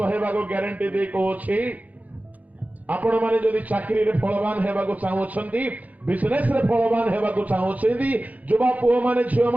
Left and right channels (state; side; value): late; left; 0.076 ms